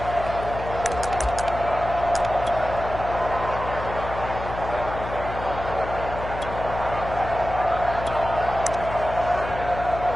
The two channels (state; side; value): noise; left; hum, 8 dB below the sound